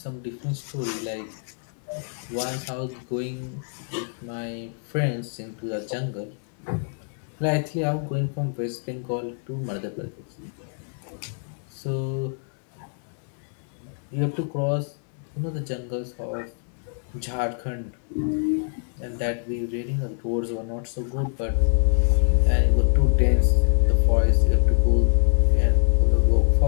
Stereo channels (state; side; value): silent; right; digital silence